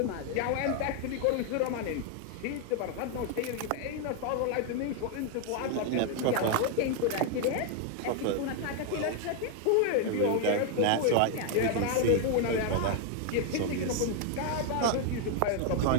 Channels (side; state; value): both; different; correlation 0.01